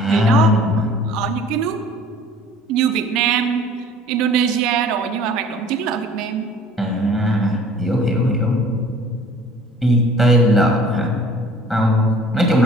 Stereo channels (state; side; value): normal; both; correlation 0.50